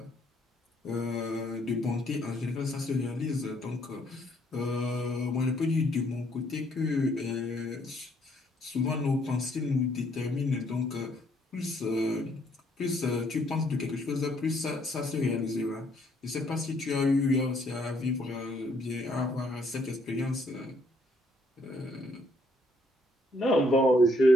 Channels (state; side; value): normal; both; correlation 0.68